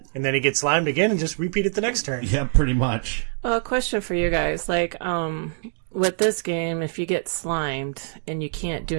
And then he gets slimed again and just repeat it the next turn. Yeah, pretty much. Well, a question for you guys. Like, with this game, if you get slimed and you can't do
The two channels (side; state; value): left; silent; digital silence